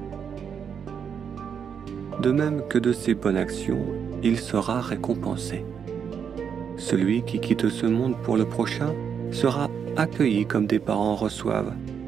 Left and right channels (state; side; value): quieter; left; 7.3 dB